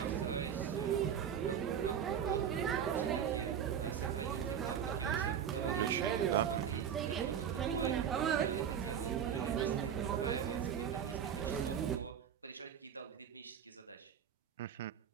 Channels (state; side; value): quieter; left; 8.4 dB